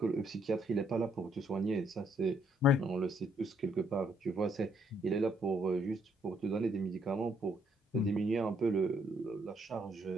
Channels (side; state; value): both; normal; correlation 0.71